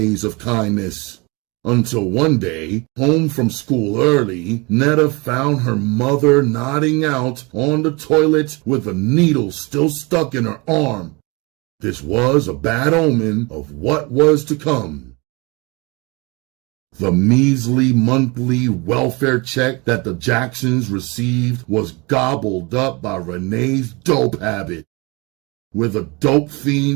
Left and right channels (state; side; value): quieter; left; 27.3 dB